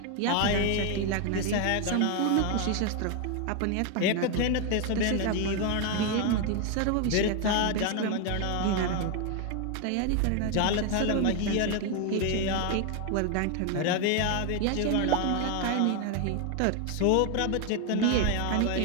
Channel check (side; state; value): both; different; correlation 0.01